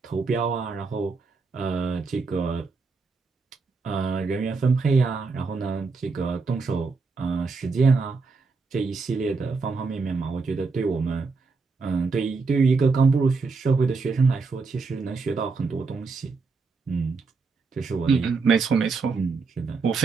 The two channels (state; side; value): quieter; left; 4.4 dB